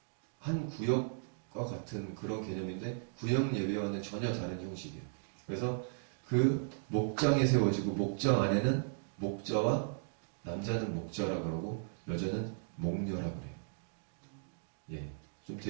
한 구역과 같은 그런 개념인데 구역 예배와는 전혀 다른 형식이에요. 그래서 그 목장에 세워지고 목장 안에는 목자와 남자는 목자라 그러고 여자는 목녀라 그래요. 예, 좀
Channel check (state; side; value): silent; left; digital silence